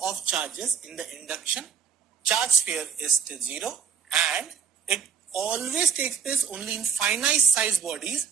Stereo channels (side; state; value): left; quieter; 7.0 dB